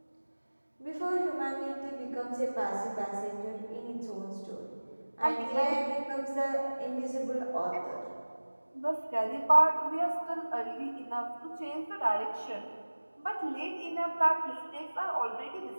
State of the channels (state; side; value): inverted; both; correlation -1.00